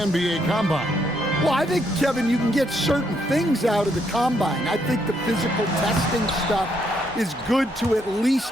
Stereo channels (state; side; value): normal; both; correlation 0.74